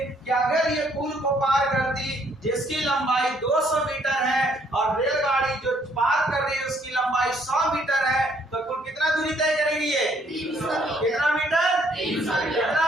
कि अगर ये पुल को पार करती जिसकी लंबाई 200 मीटर है और रेलगाड़ी जो पार कर रही है उसकी लंबाई 100 मीटर है, तो कुल कितना दूरी तय करेगी ये? 300। कितना मीटर? 300।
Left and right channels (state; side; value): normal; both; correlation 0.66